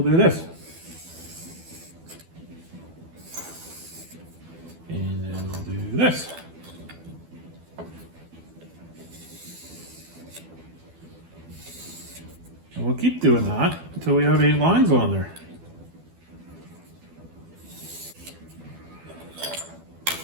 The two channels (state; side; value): late; left; 12 ms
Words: do this. And then we'll do this. And we'll keep doing that until we have 8 lines on there.